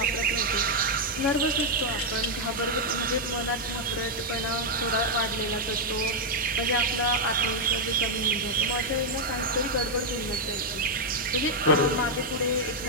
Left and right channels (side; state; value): both; normal; correlation -0.02